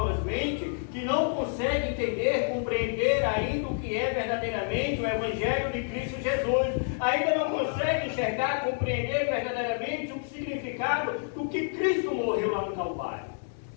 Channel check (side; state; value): right; silent; 59 dB below the other